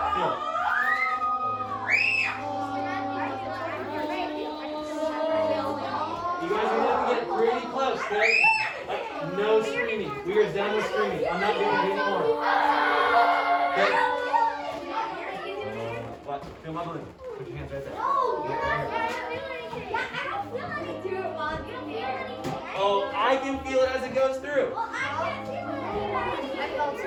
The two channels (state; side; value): identical; both; correlation 1.00